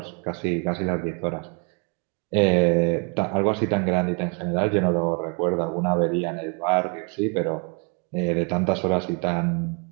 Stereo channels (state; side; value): quieter; left; 33.3 dB